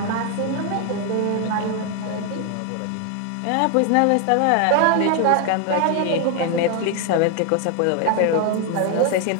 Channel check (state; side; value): different; both; correlation 0.01